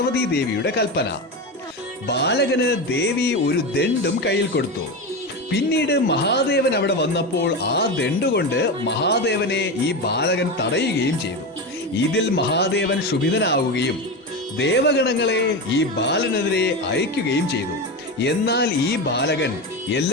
ദേവിയുടെ കൽപ്പന. ബാലകന് ദേവി ഒരു ദണ്ഡും കയ്യിൽ കൊടുത്തു. പിന്നീട് മഹാദേവൻ അവിടെ വന്നപ്പോൾ ആ ദണ്ഡുകൊണ്ട് മഹാദേവനെ ഈ ബാലകൻ തടയുകയും ചെയ്തു. ഇതിൽ മഹാദേവൻ ക്ഷുഭിതനാവുകയും ദേവഗണങ്ങളെ ഈ ബാലനെതിരെ അയക്കുകയും ചെയ്തു. എന്നാൽ ഈ ബാലകൻ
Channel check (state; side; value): normal; both; correlation 0.19